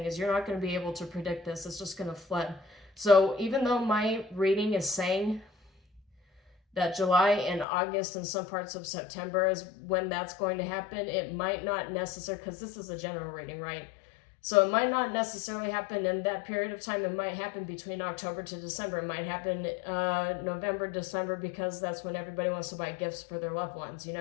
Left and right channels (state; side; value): drops out; right; at 7.7 s